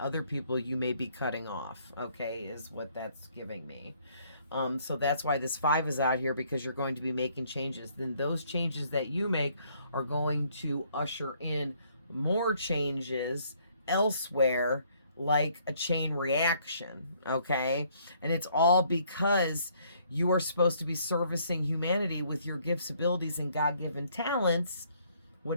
people you may be cutting off, okay, is what that's giving me. So that's why this 5 is out here, because you're going to be making changes. Then those changes that you make are going to usher in more changes elsewhere, like a chain reaction, okay? And it's all because you are supposed to be servicing humanity with your gifts, abilities, and God-given talents.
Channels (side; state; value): both; inverted; correlation -0.65